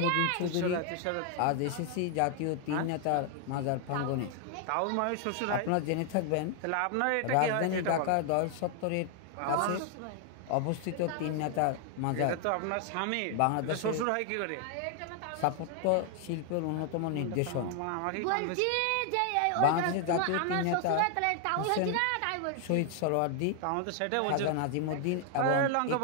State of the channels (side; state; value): both; different; correlation 0.00